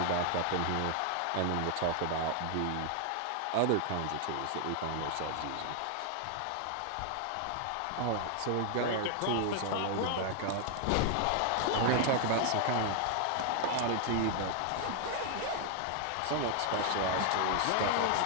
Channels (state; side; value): different; both; correlation 0.00